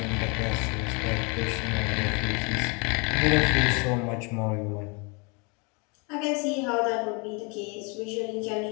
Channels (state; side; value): quieter; right; 31.7 dB